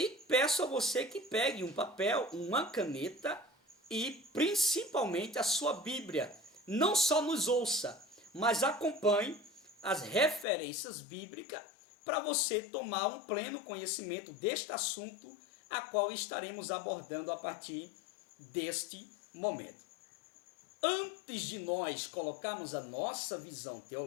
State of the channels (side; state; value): right; drops out; at 10.5 s